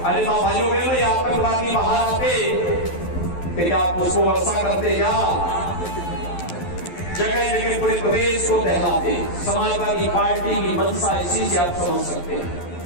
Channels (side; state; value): right; late; 12 ms